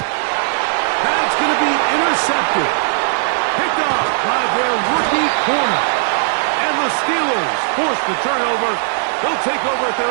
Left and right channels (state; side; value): silent; left; 57 dB below the other